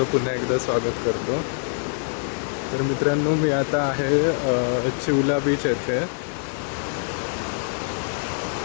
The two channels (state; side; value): silent; right; digital silence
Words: पुन्हा एकदा स्वागत करतो. तर मित्रांनो, मी आता आहे चिवला बीच येथे.